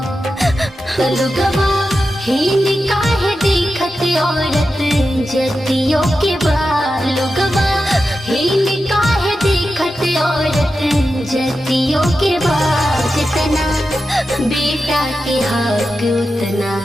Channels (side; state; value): both; normal; correlation 0.90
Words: लोगवा हिंद काहे देखत औरत जतियों के बाल, लोगवा हिंद काहे देखत औरत जतियों के बाद। जितना बेटा के हक उतना